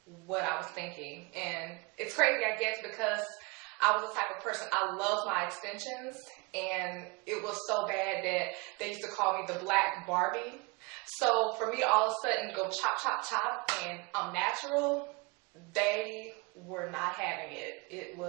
what I was thinking, and it's crazy, I guess, because I was the type of person, I loved my extensions, and it was so bad that they used to call me the Black Barbie. So for me to all of a sudden go chop, chop, chop, and I'm natural, they were not having it. It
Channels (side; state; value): left; quieter; 27.4 dB